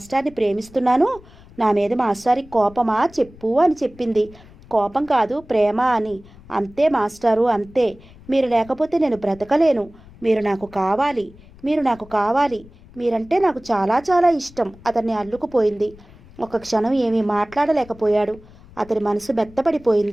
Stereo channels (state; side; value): noise; left; rumble, 23 dB below the sound